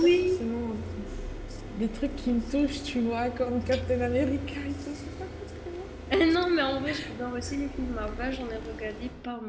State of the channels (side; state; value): both; identical; correlation 1.00